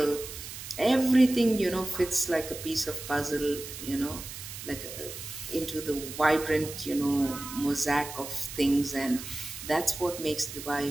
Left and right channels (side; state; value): right; noise; hiss, 10 dB below the sound